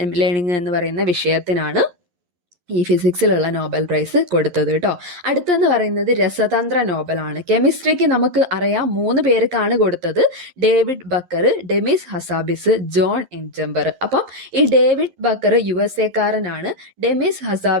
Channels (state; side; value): late; left; 11 ms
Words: ലേണിംഗ് എന്ന് പറയുന്ന വിഷയത്തിനാണ് ഈ ഫിസിക്സിലുള്ള നോബൽ പ്രൈസ് കൊടുത്തത് കേട്ടോ. അടുത്തെന്ന് പറയുന്നത് രസതന്ത്ര നോബലാണ്. കെമിസ്ട്രിക്ക് നമുക്ക് അറിയാം 3 പേർക്കാണ് കൊടുത്തത്. David Baker, Demis Hassabis, John M Jumper. അപ്പം ഈ ഡേവിഡ് ബക്കർ USA കാരനാണ്, ഡെമിസ്